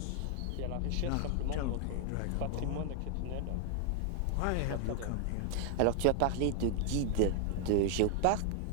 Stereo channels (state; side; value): different; both; correlation 0.00